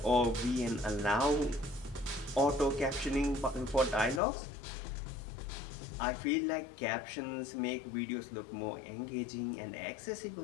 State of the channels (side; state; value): right; drops out; at 4.2 s